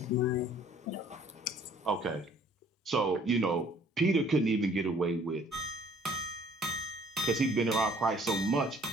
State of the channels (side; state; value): both; normal; correlation 0.57